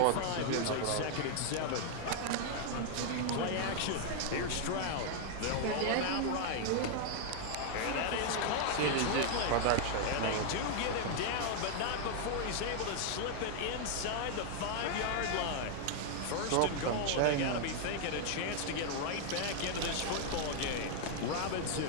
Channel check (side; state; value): both; different; correlation 0.00